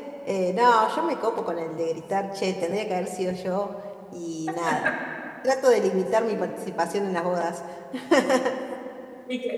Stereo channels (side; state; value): both; identical; correlation 1.00